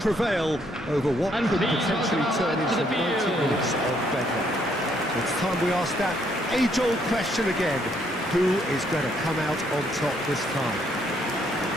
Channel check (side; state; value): both; normal; correlation 0.70